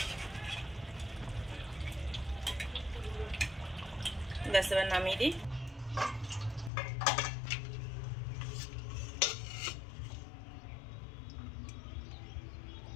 ব্যাস, এবার নামিয়ে দিই।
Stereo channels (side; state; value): right; drops out; at 6.7 s